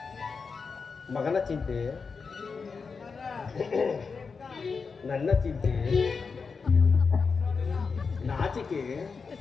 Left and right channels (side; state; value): right; quieter; 5.1 dB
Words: ಮಗನ ಚಿಂತೆ, ನನ್ನ ಚಿಂತೆ, ನಾಚಿಕೆ.